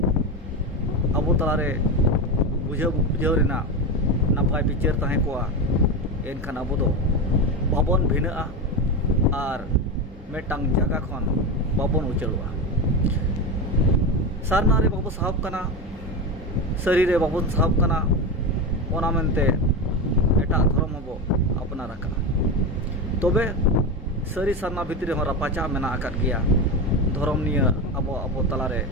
अब तलारे बुझाव रेना नापाय विचार ताहे को एनखान अब दो बाबन भिना और मेटांग जगह खन बाबन उचलवा सारना रे बाबू साहब कना सरी रे बाबू साहब कना ओना मेनते एटा धर्म हबो अपनार आका तबे सरी सारना भितरी हो रापाचा मेना आकाद गिया धर्म निया अबो अबो तलारे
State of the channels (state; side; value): normal; both; correlation 0.19